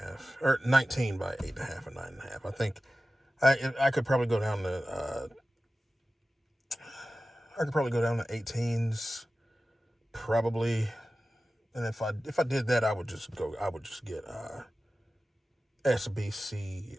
or 19 by 8.5 and 9.5. I think I could probably go down to 18s, probably. And if I did that, I would just get SBC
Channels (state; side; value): normal; both; correlation 0.95